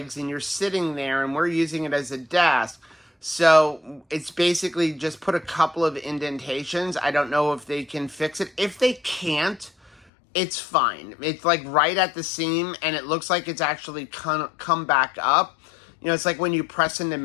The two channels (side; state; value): right; drops out; at 10.1 s